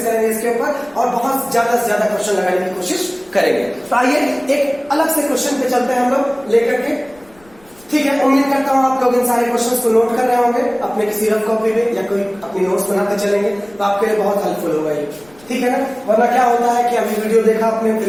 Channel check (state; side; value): noise; left; rumble, 29 dB below the sound